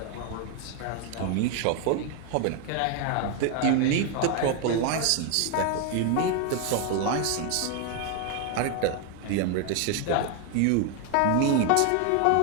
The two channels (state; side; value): different; both; correlation 0.01